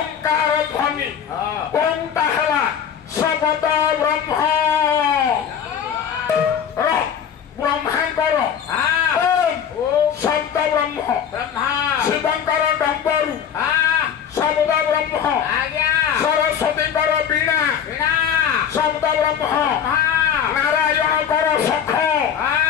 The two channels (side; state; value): right; quieter; 8.3 dB